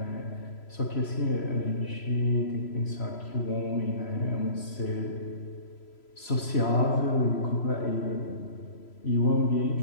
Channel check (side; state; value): right; late; 3.0 ms